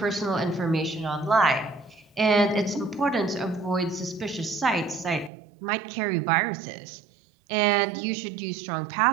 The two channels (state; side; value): drops out; left; at 5.3 s